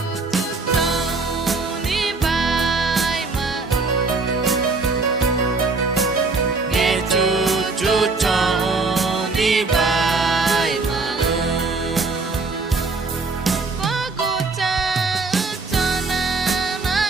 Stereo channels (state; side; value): quieter; left; 3.9 dB